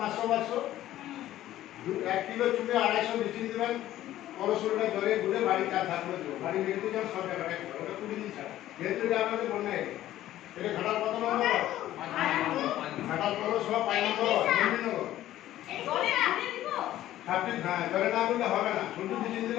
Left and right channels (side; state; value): right; quieter; 13.7 dB